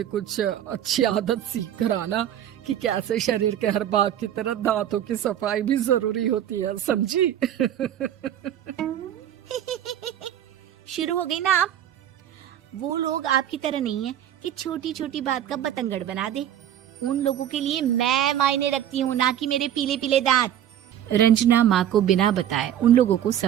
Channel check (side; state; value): left; quieter; 10.8 dB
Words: कुछ अच्छी आदत सीख कर आना कि कैसे शरीर के हर भाग की तरह दांतों की सफाई भी जरूरी होती है, समझी? शुरू हो गई ना आप। वो लोग आपकी तरह नहीं है कि छोटी छोटी बात का बतंगड़ बना दे। उन लोगों के लिए मैं मायने रखती हूँ, ना कि मेरे पीले पीले दांत। रंजना माँ को बिना बताए उन लोगों को